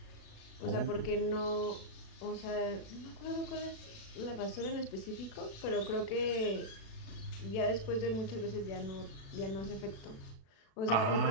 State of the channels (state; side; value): late; right; 36 ms